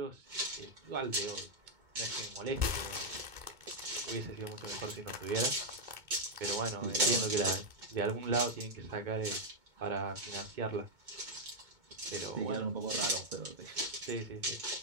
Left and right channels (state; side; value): late; left; 2.2 ms